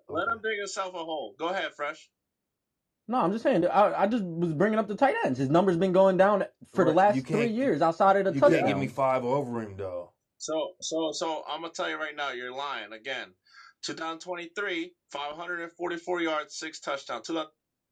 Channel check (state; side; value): identical; both; correlation 1.00